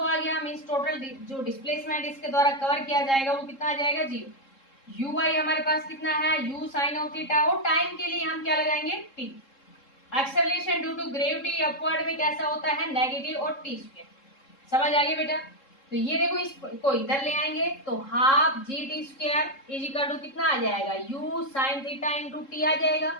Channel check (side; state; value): right; late; 3.7 ms